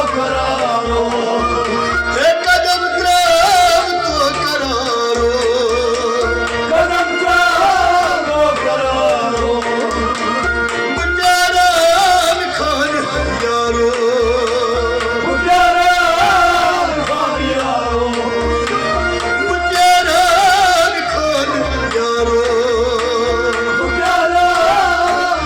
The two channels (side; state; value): both; identical; correlation 1.00